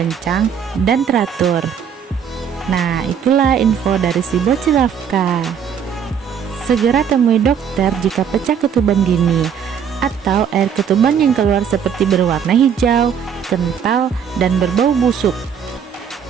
dan teratur. Nah, itulah info dari si bocil Rafka. Segera temui dokter jika pecah ketuban dini atau air ketuban yang keluar seperti berwarna hijau, kental, dan berbau busuk.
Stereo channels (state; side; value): quieter; left; 7.7 dB